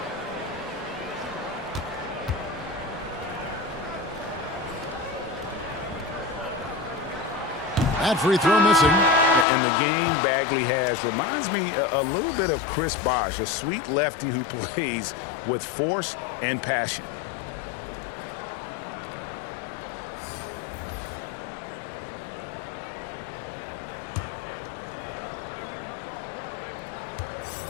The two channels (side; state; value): right; drops out; at 9.5 s